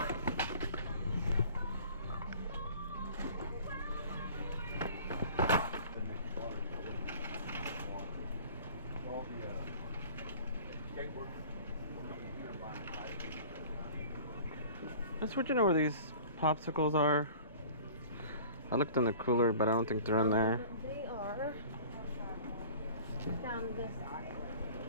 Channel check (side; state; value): both; inverted; correlation -0.45